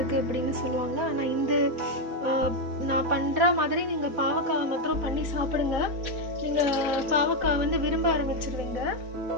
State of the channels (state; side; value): late; left; 4.1 ms